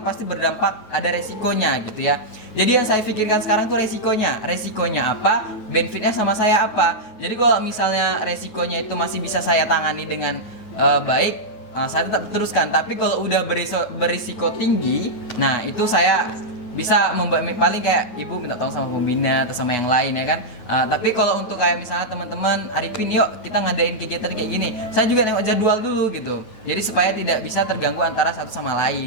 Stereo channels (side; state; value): right; late; 9.3 ms